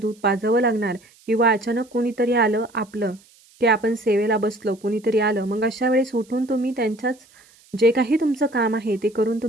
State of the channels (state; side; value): noise; right; hiss, 29 dB below the sound